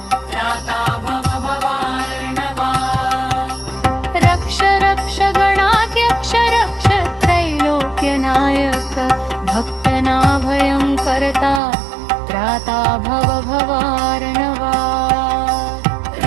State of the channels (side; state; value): left; drops out; at 11.6 s